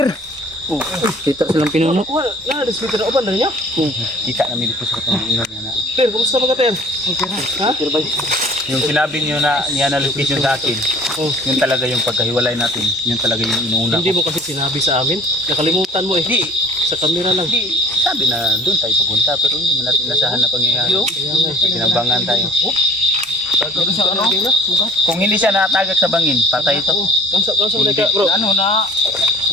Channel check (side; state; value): both; normal; correlation 0.49